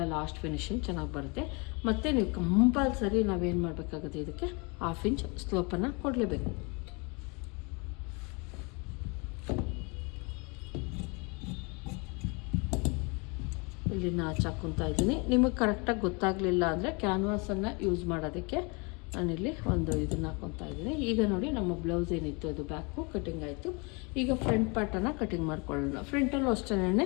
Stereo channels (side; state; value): right; quieter; 30.6 dB